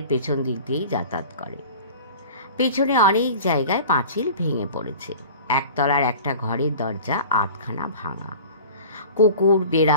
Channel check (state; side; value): inverted; both; correlation -0.40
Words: পেছন দিক দিয়েই যাতায়াত করে। পেছনে অনেক জায়গায় পাঁচিল ভেঙে পড়েছে। একতলার একটা ঘরের দরজা আধখানা ভাঙা। কুকুর,